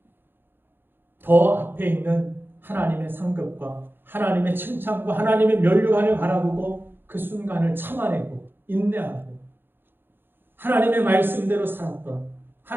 더 앞에 있는 하나님의 상급과 하나님의 칭찬과 하나님의 면류관을 바라보고 그 순간을 참아내고 인내하고 하나님의 말씀대로 살았던,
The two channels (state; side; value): late; left; 0.10 ms